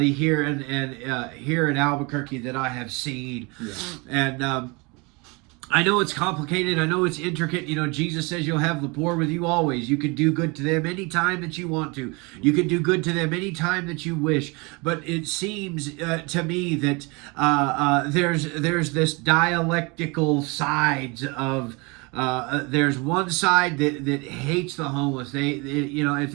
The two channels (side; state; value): left; quieter; 28.1 dB